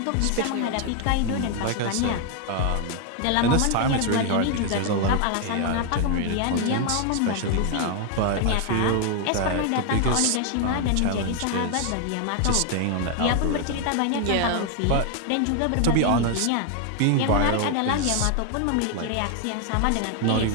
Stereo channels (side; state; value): both; different; correlation 0.01